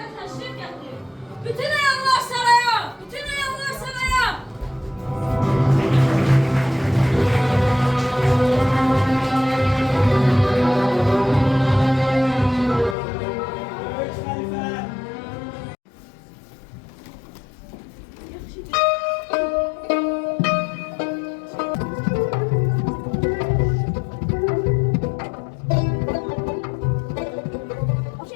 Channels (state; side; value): drops out; right; at 13.0 s